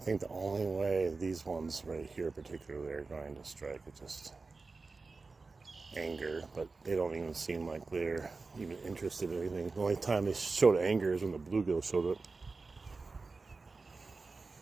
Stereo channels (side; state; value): left; quieter; 4.0 dB